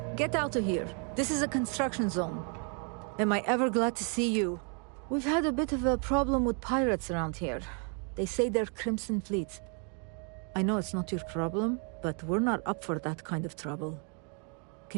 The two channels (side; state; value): left; quieter; 39.7 dB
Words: Get out of here. This is a construction zone. Am I ever glad to see you? We've had a bit of a problem with pirates around here. They say they're Crimson Fleet. I know it's not your problem, but we're not up for that kind of trouble.